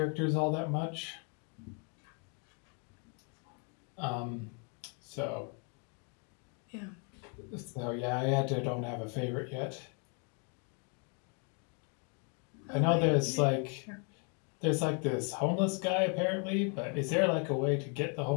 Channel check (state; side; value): quieter; right; 38.0 dB